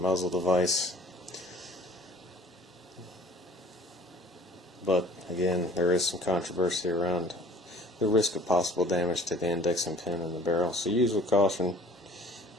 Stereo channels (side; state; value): both; normal; correlation 0.50